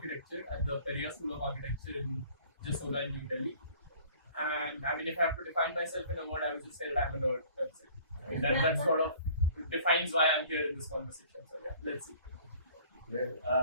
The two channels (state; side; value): inverted; both; correlation -0.52